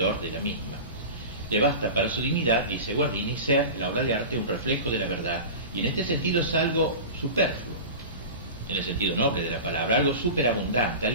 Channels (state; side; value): inverted; both; correlation -0.31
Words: de la misma. Le basta para su dignidad, dice Guardini, ser la obra de arte un reflejo de la verdad, y en este sentido es algo superfluo, en el sentido noble de la palabra, algo superabundante,